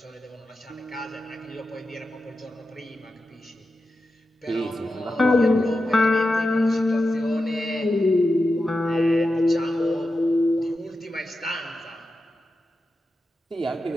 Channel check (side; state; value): both; normal; correlation 0.90